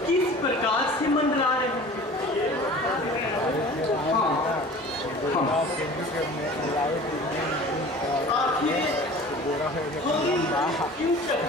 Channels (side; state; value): both; normal; correlation 0.42